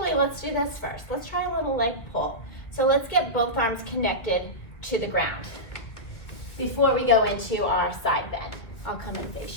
let's do this first. Let's try a little leg pull. So let's get both arms connected to the ground before we go into our side bend. I'll come and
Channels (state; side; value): late; right; 2.1 ms